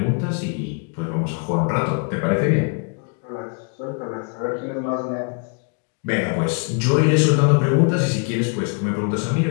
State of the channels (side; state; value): right; quieter; 37.6 dB